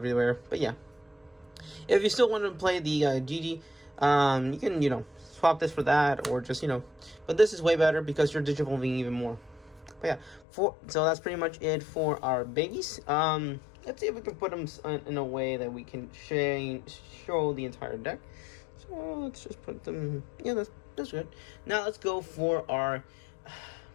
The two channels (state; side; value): drops out; right; at 10.5 s